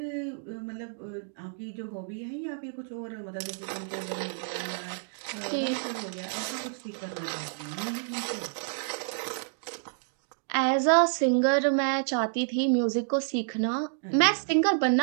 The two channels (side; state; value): left; silent; digital silence